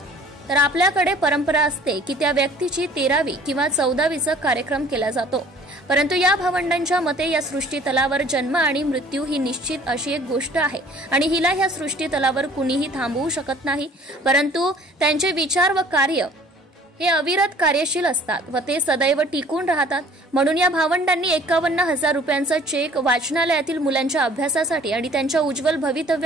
आपल्याकडे परंपरा असते की त्या व्यक्तीची 13वी किंवा 14वीचा कार्यक्रम केला जातो। परंतु या भावंडांच्या मते या सृष्टीतलावर जन्म आणि मृत्यू ही निश्चित अशी एक गोष्ट आहे आणि हिला ह्या सृष्टीतलावर कुणीही थांबवू शकत नाही, परंतु त्यांचे विचार व कार्य हे अविरत कार्यशील असतात व ते सदैव टिकून राहतात। म्हणून या भावंडांनी 51,000 रुपयांचा चेक वाचनालयातील मुलांच्या अभ्यासासाठी आणि त्यांच्या उज्ज्वल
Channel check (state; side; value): normal; both; correlation 0.53